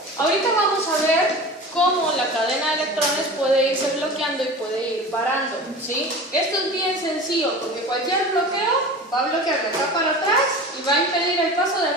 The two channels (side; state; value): both; normal; correlation 0.35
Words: ahorita vamos a ver cómo la cadena de electrones puede irse bloqueando y puede ir parando, ¿sí? Esto es bien sencillo porque cualquier bloqueo va a bloquear de acá para atrás y va a impedir el paso de